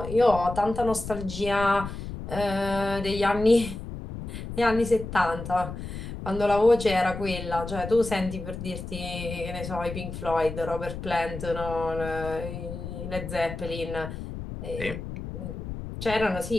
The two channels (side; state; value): left; noise; rumble, 8 dB below the sound